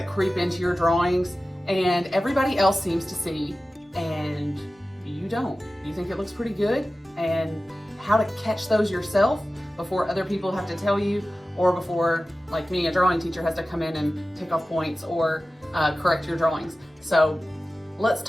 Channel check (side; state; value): both; normal; correlation 0.95